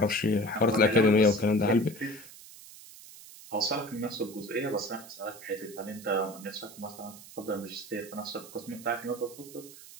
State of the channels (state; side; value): noise; right; hiss, 18 dB below the sound